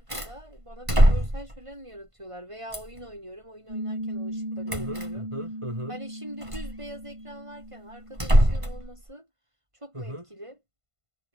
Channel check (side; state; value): left; late; 1.5 ms